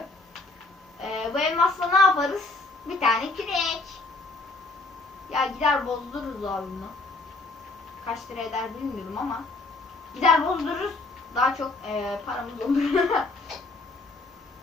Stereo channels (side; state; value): right; quieter; 3.2 dB